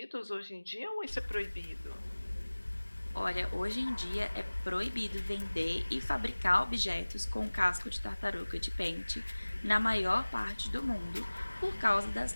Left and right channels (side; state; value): both; inverted; correlation -1.00